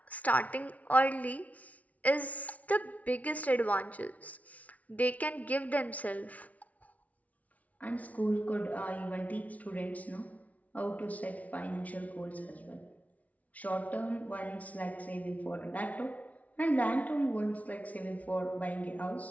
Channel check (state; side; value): late; right; 0.069 ms